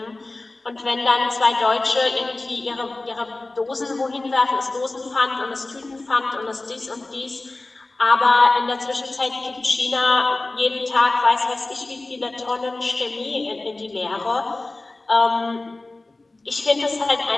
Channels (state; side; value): quieter; right; 3.1 dB